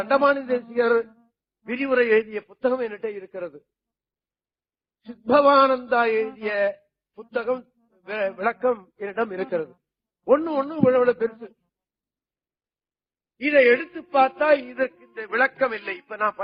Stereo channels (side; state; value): both; identical; correlation 1.00